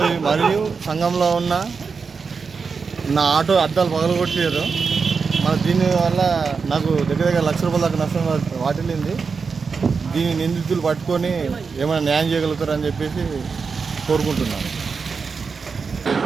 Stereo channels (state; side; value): quieter; left; 5.2 dB